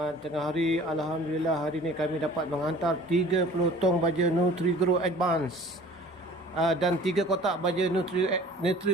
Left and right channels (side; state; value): both; normal; correlation 0.48